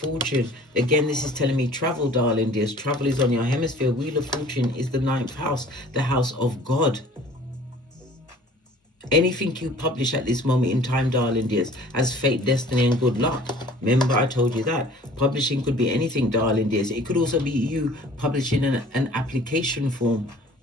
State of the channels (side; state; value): both; normal; correlation 0.50